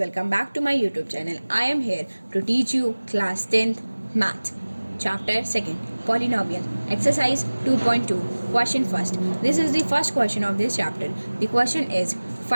back to my YouTube channel. I am here to teach you class 10th math chapter 2nd polynomial exercise 2.2 question first. This is the first question of this chapter. The question is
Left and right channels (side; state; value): both; inverted; correlation -1.00